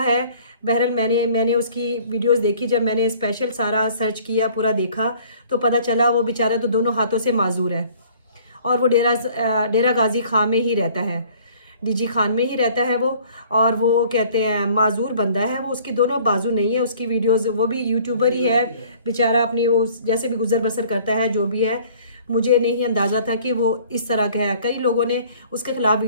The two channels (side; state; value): both; inverted; correlation -0.54